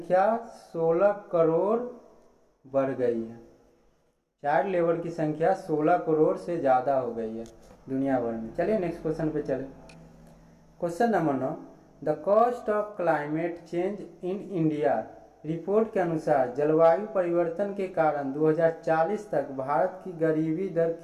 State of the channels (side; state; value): both; identical; correlation 1.00